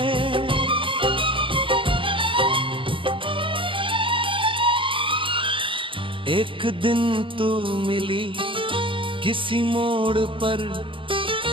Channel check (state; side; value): late; left; 0.25 ms